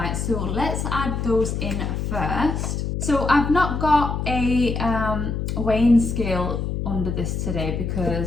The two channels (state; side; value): noise; left; hum, 2 dB below the sound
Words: so let's add those in first. So I've not got a weighing scale under this today